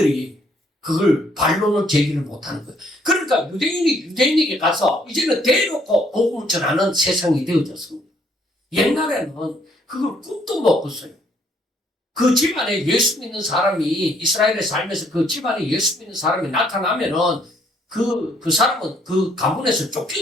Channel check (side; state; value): both; normal; correlation 0.67